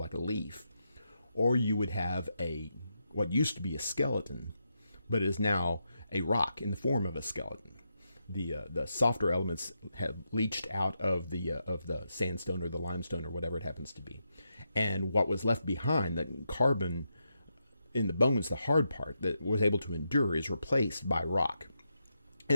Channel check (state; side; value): inverted; both; correlation -0.84